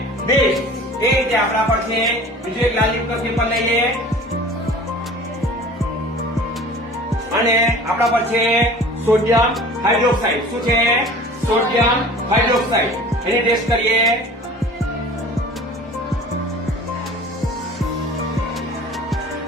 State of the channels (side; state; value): both; normal; correlation 0.43